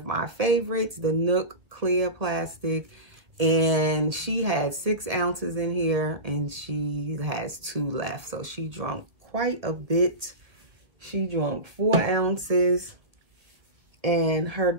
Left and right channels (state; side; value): late; left; 1.4 ms